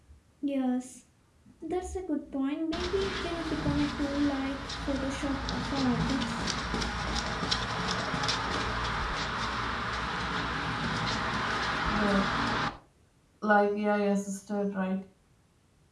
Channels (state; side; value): identical; both; correlation 1.00